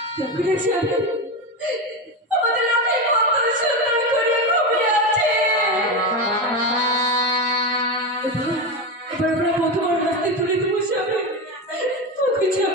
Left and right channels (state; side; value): normal; both; correlation 0.17